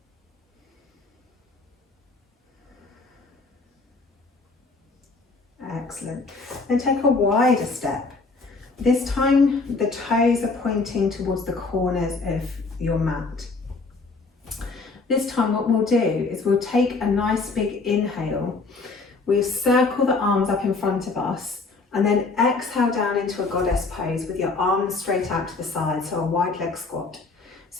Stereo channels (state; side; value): quieter; right; 3.9 dB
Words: Excellent. Then take a wider step. This time the toes are pointing towards the corners of your mat. This time what we'll do is we'll take a nice big inhale. We'll circle the arms up in front of us and then exhale down into a goddess pose with your arms straight out to the side, so a wide leg squat.